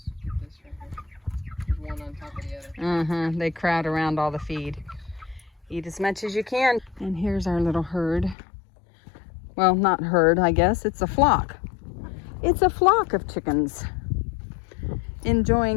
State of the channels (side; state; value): right; drops out; at 8.3 s